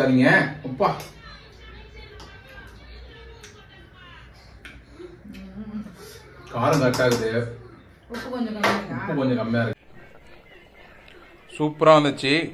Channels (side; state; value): both; identical; correlation 1.00